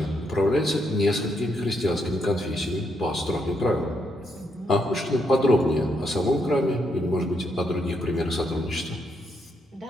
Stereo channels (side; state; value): both; normal; correlation 0.77